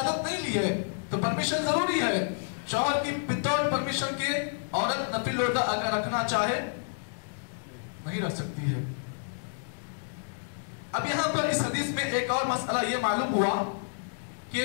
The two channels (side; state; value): right; silent; digital silence